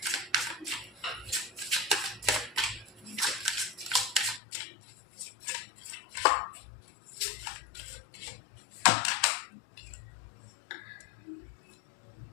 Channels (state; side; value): drops out; right; at 4.4 s